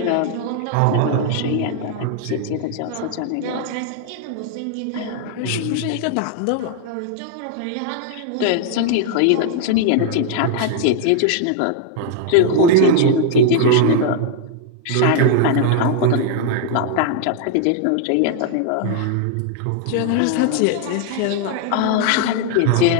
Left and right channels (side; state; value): both; different; correlation 0.00